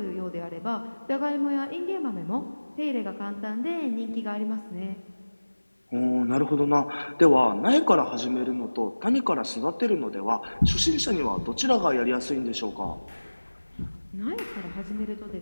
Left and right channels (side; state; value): both; inverted; correlation -1.00